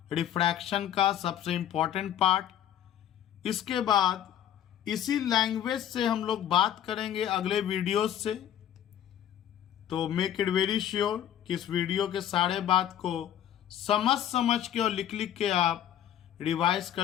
रिफ्रैक्शन का सबसे इंपॉर्टेंट पार्ट। इसके बाद इसी लैंग्वेज से हम लोग बात करेंगे अगले वीडियोस से। तो मेक इट वेरी श्योर कि इस वीडियो के सारे बात को समझ के और लिख के आप रिवाइज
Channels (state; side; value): quieter; right; 10.7 dB